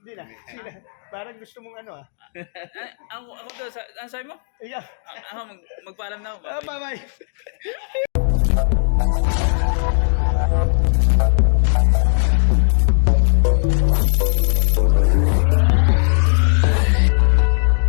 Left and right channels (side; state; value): right; silent; digital silence